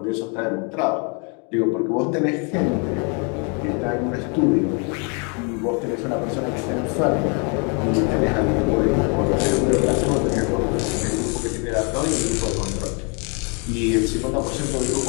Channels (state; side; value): quieter; right; 35.9 dB